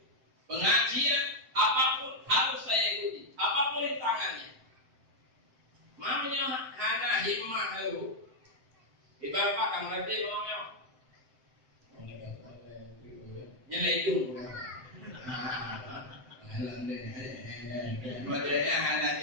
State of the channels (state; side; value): late; left; 7.8 ms